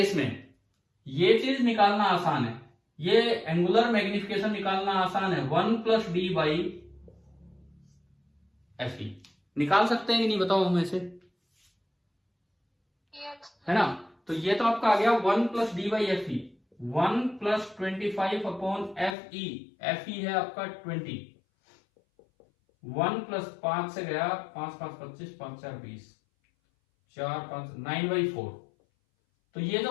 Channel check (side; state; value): right; drops out; at 19.2 s